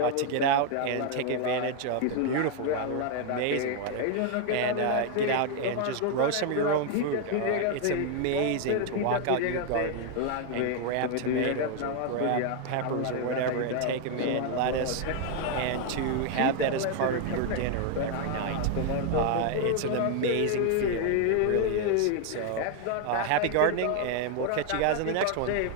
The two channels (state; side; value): different; both; correlation 0.00